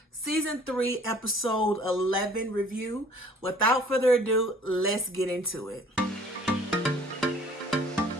Season 3 Episode 11 review. Without further ado, let's get into it.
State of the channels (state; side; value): normal; both; correlation 0.53